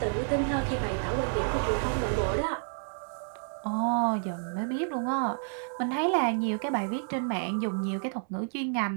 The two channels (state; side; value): silent; left; 58 dB below the other